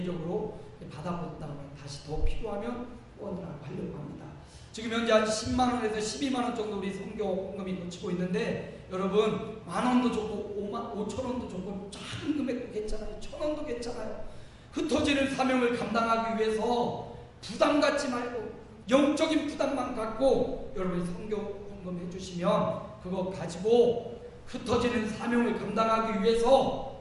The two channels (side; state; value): both; identical; correlation 1.00